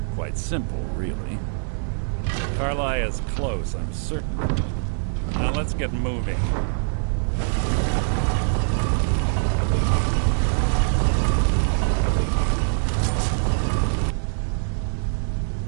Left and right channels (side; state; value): left; silent; digital silence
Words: Quite simple, really. Carlia's close, I'm certain. Now let's get moving.